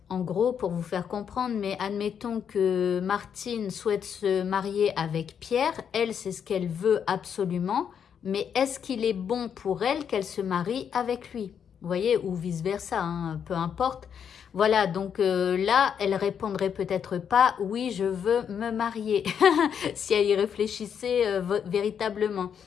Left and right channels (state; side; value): quieter; right; 7.8 dB